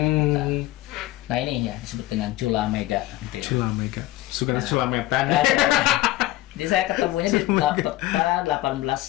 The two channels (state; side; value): quieter; right; 16.8 dB